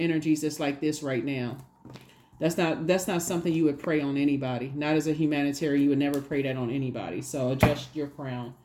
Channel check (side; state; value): both; identical; correlation 1.00